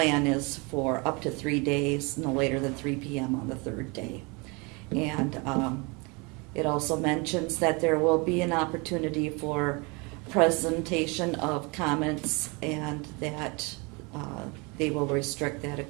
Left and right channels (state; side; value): quieter; left; 28.8 dB